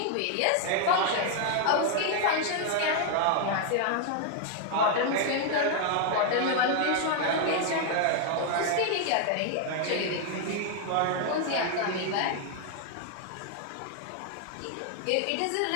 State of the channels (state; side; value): different; both; correlation 0.00